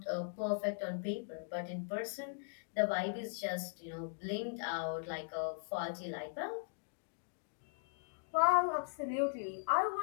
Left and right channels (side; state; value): right; silent; digital silence